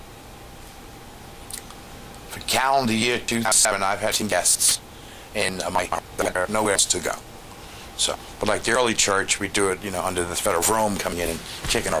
for calendar year 2007, I've had 10 guests in my nowhere else to go. So, but like the early church, we do it, under the threat of Rome coming in and kicking our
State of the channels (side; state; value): both; identical; correlation 1.00